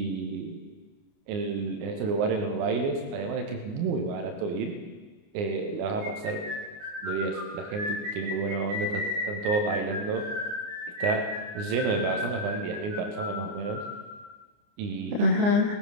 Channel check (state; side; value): late; left; 29 ms